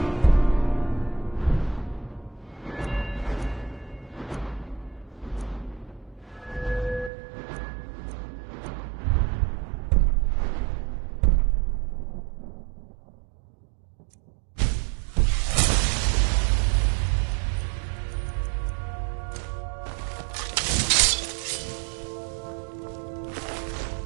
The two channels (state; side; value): drops out; left; at 7.1 s